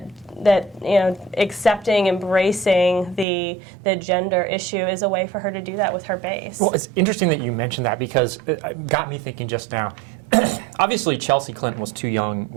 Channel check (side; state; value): left; drops out; at 3.2 s